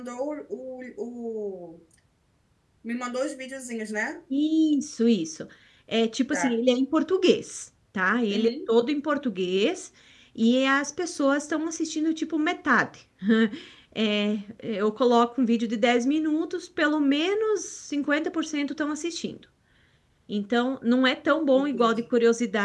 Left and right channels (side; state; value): both; identical; correlation 1.00